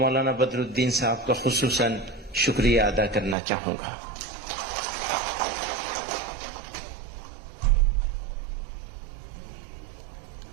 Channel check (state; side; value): drops out; left; at 3.4 s